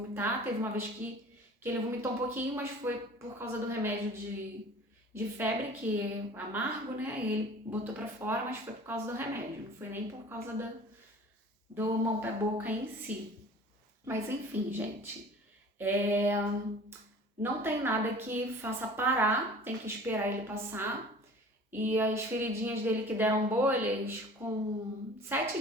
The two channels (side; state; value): both; normal; correlation 0.44